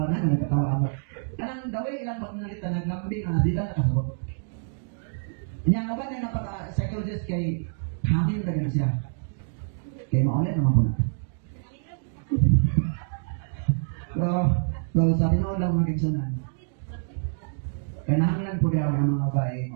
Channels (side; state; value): left; silent; digital silence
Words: ako. Kanang gawin ilang pag nalita, naglambing na sila nakasabot. Niya ubag na psychologist kay hangin na ganun siya. Kaya maulit naman po natin. Pero sa tinood lang mga kiksunan. Kaya nahanglan po daw ng mga babae